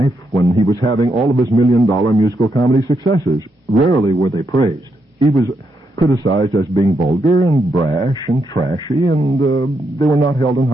when he was having all of his million-dollar musical comedy successes. Rarely were they praised. He was criticized as being vulgar and brash and trashy, and they were not held in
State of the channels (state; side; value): normal; both; correlation 0.80